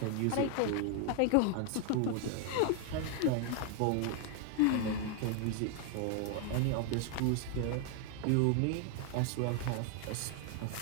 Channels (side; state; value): both; different; correlation 0.01